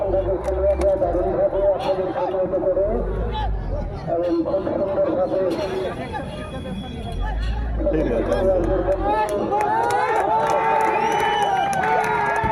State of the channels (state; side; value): identical; both; correlation 1.00